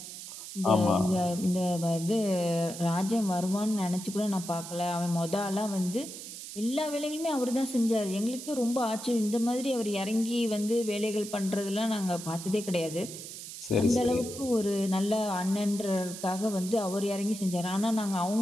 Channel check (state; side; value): noise; right; hiss, 11 dB below the sound